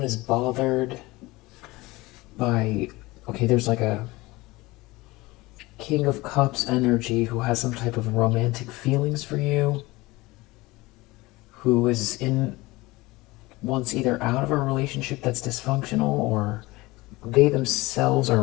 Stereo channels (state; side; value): quieter; right; 21.1 dB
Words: is bothered by, there's like a King of Cups energy who has some type of romantic feelings for you, who is wants either out of a relationship that's dysfunctional, or they themselves are